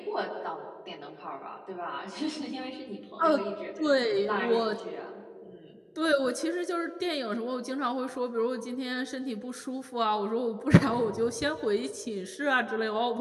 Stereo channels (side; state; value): both; identical; correlation 1.00